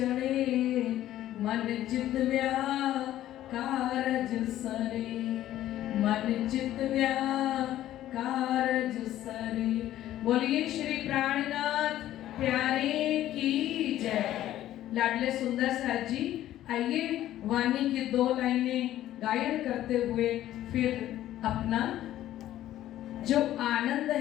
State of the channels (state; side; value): quieter; right; 13.2 dB